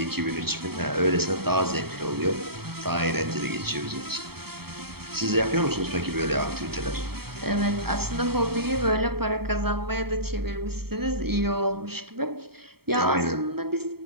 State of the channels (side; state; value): left; late; 0.95 ms